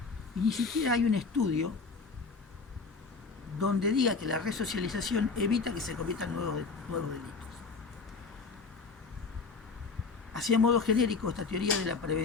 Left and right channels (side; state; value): right; quieter; 4.6 dB